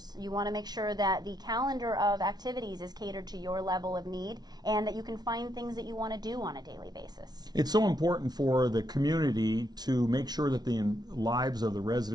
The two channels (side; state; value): left; late; 0.19 ms